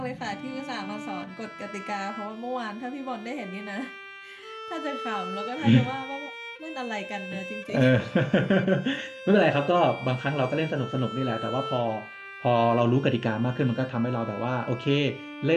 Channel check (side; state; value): both; identical; correlation 1.00